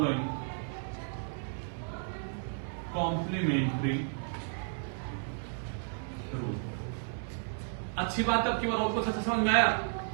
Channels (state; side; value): silent; left; 56 dB below the other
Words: complementary rule. अच्छी बात अब की बार और कुछ अच्छा समझ में आया।